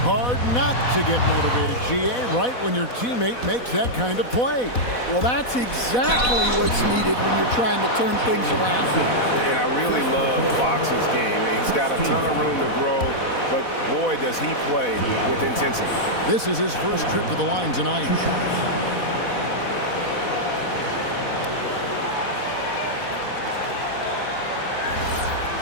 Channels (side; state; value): right; late; 4.1 ms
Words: Hard not to get motivated, GA, right when your teammate makes that kind of play. Well, that's exactly what's needed when you're trying to turn things around. And I really love Fox's game. He's got a ton of room to grow, but boy, does he play with intensity. This is his first trip to the line tonight.